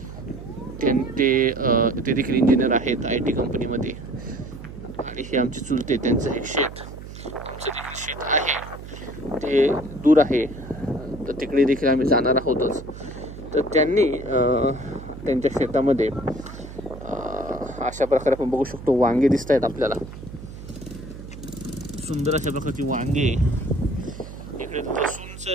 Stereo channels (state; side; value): noise; right; hum, 13 dB below the sound